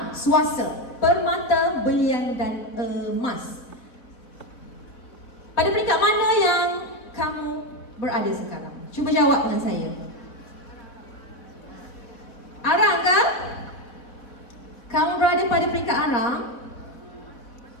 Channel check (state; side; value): late; right; 4.1 ms